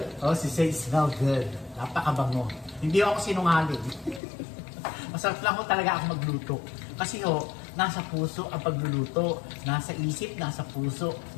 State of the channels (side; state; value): right; drops out; at 4.2 s